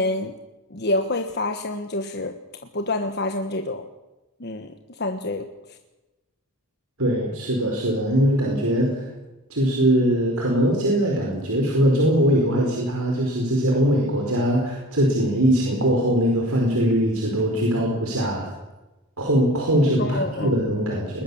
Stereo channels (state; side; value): normal; both; correlation 0.40